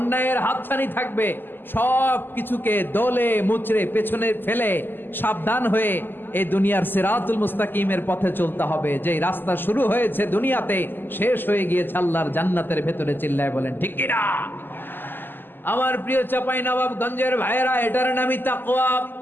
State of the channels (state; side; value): late; right; 0.094 ms